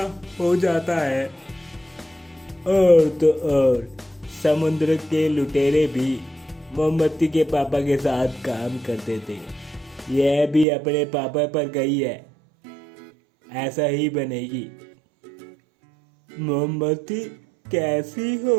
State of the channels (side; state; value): left; drops out; at 10.7 s